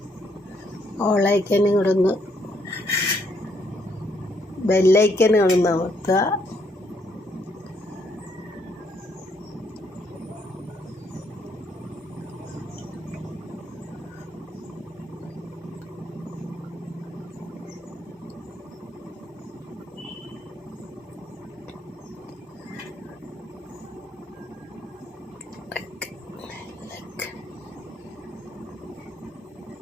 ഓളൈക്കനും കൂടെ ഒന്ന് ബെല്ലൈക്കനും കൂടെ ഒന്ന് അമർത്തുക.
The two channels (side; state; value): both; normal; correlation 0.72